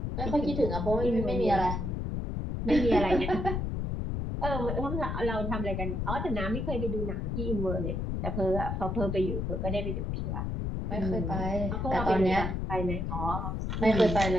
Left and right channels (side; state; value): left; noise; rumble, 2 dB below the sound